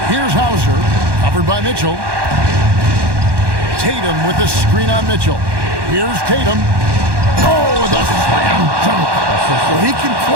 Here's Hauser, covered by Mitchell. Tatum with the screen on Mitchell. Here's Tatum. Oh, the slam dunk. Well, he can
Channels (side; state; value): left; late; 1.1 ms